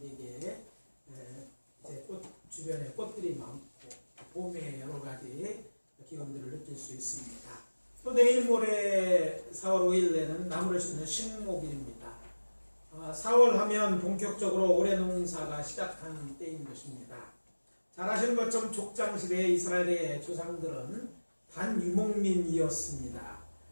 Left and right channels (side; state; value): both; inverted; correlation -1.00